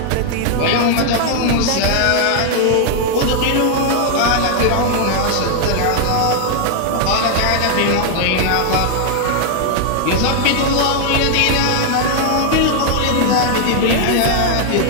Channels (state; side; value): different; both; correlation 0.00